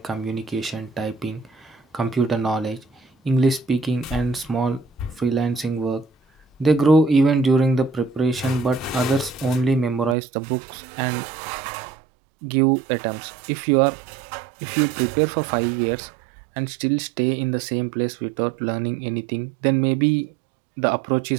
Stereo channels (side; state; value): left; drops out; at 10.2 s